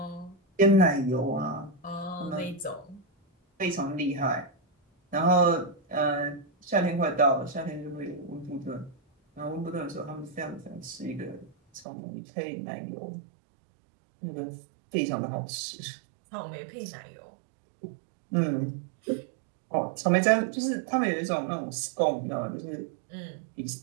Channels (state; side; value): drops out; left; at 11.9 s